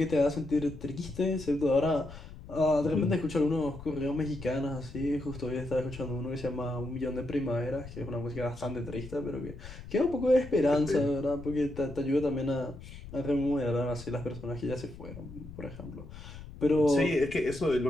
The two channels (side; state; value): left; noise; rumble, 14 dB below the sound